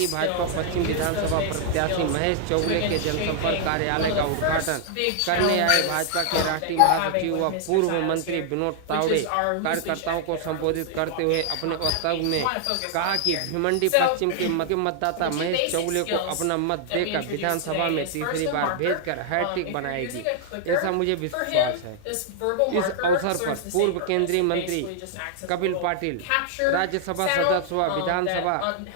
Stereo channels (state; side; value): different; both; correlation 0.00